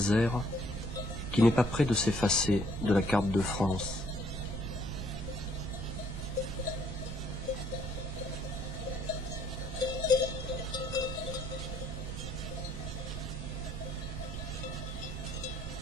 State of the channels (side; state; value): right; noise; rumble, 10 dB below the sound